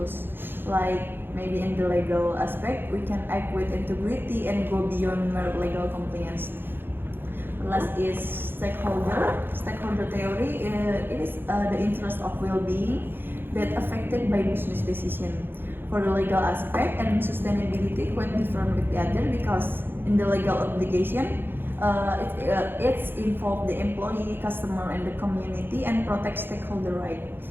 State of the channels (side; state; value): left; late; 0.10 ms